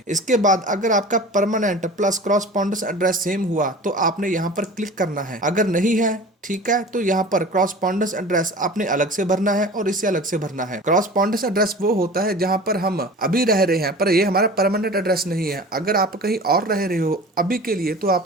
इसके बाद अगर आपका परमानेंट प्लस क्रॉसपॉन्डेंस एड्रेस सेम हुआ तो आपने यहाँ पर क्लिक करना है, अगर नहीं है, ठीक है, तो यहाँ पर क्रॉसपॉन्डेंस एड्रेस आपने अलग से भरना है और इसे अलग से भरना है। क्रॉसपॉन्डेंस एड्रेस वो होता है जहाँ पर हम अभी रह रहे हैं पर ये हमारा परमानेंट एड्रेस नहीं है। अगर आप कहीं और रह रहे हो अभी के लिए तो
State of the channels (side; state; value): both; normal; correlation 0.38